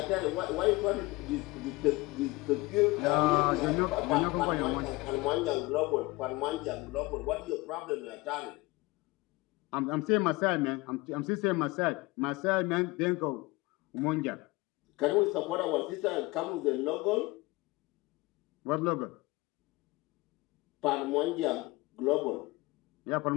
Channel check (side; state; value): right; quieter; 22.3 dB